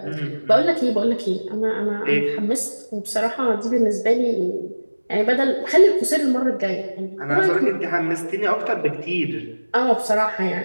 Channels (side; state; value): both; inverted; correlation -1.00